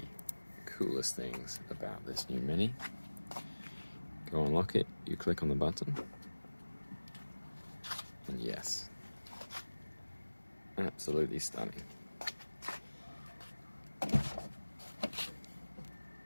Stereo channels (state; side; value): inverted; both; correlation -1.00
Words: coolest things about this new Mini. Go unlock it, you click on the button, and yes, absolutely stunning.